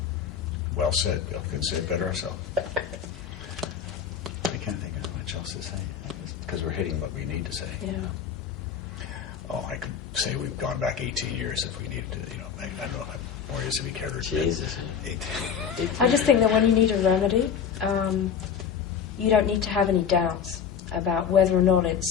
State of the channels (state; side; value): quieter; right; 7.4 dB